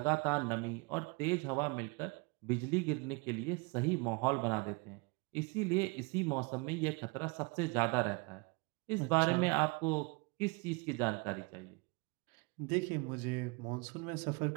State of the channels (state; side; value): quieter; left; 28.9 dB